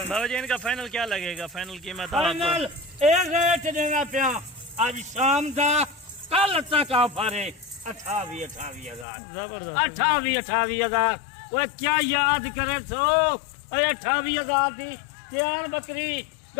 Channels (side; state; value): right; drops out; at 9.1 s